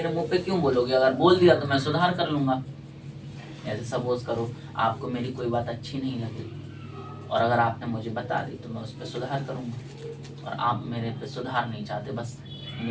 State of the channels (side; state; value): both; identical; correlation 1.00